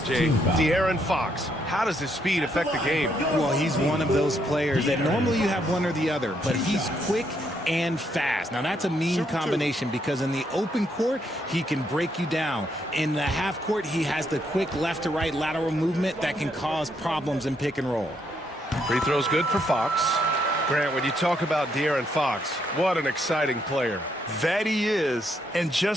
De'Aaron Fox. How does his speed affect the game? Well, he's one of those players that normally you have one or the other, but he's quick and fast. Now, that's a mean combination because in the open court, he can break you down. In the half court, he has the quick left to right lateral movement that can cause problems in pick and roll. Free throw's good for Fox. Grant, when you talk about De'Aaron Fox, what an exciting player. That he is, and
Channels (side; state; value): both; normal; correlation 0.75